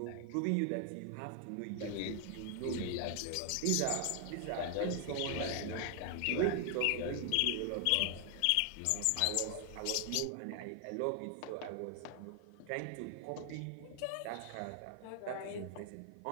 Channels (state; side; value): different; both; correlation 0.00